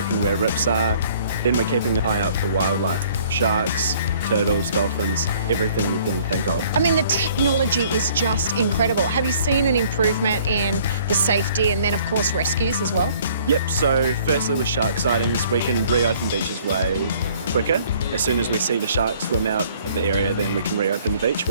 where rips are. Then we're keeping an eye out for wildlife, sharks, turtles, dolphins, everything you can think of. I mean, the technology is just incredible. Have you seen an improvement in the safety and then, of course, rescues as well? Yep, so firstly with shark sightings, we can reopen beaches way quicker. As soon as we see the shark swim out of the area, then we can reopen the beach,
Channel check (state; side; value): inverted; both; correlation -0.57